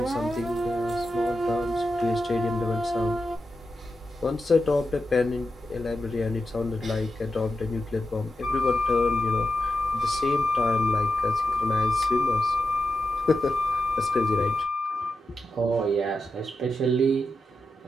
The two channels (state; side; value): normal; both; correlation 0.89